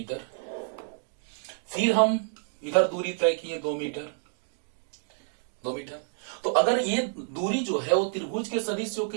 फिर हम इधर दूरी तय किए 2 मीटर, 2 मीटर। तो अगर ये दूरी जो है वो त्रिभुज के सदिश योग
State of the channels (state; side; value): silent; left; digital silence